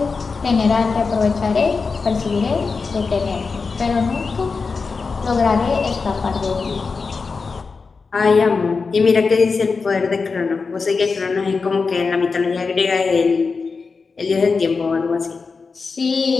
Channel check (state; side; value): quieter; right; 4.7 dB